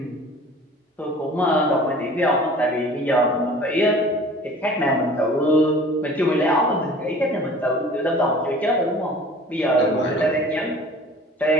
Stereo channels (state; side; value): normal; both; correlation 0.46